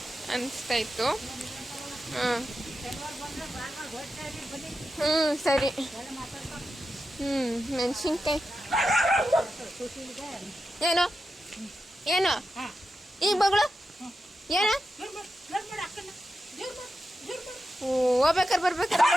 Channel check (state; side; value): normal; both; correlation 0.89